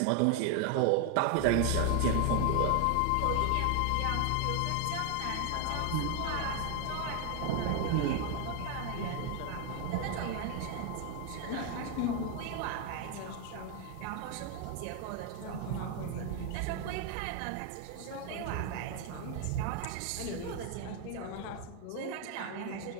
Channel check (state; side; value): different; both; correlation 0.01